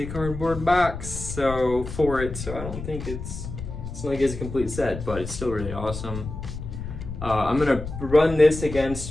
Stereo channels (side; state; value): left; noise; rumble, 8 dB below the sound